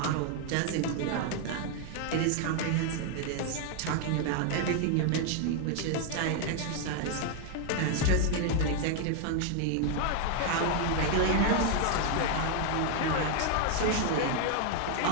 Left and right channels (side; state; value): both; different; correlation 0.00